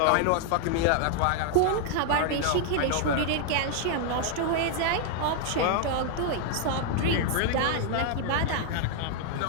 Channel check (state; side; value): different; both; correlation 0.00